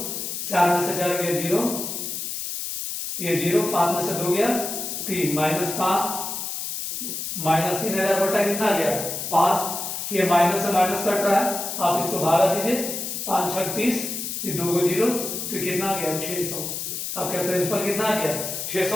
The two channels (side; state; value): left; noise; hiss, 5 dB below the sound